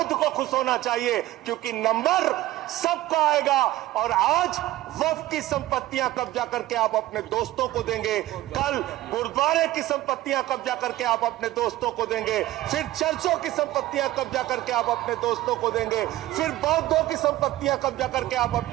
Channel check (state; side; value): quieter; left; 15.8 dB